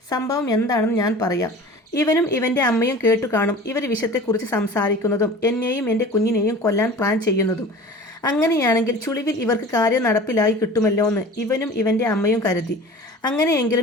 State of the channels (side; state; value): both; normal; correlation 0.40